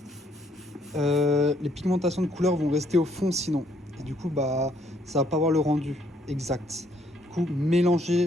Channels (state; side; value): normal; both; correlation 0.68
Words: les pigmentations de couleurs vont rester au fond sinon. Et du coup ça va pas avoir le rendu exact. Du coup,